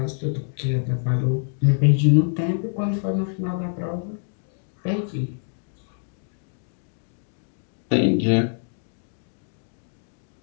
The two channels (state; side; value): silent; right; digital silence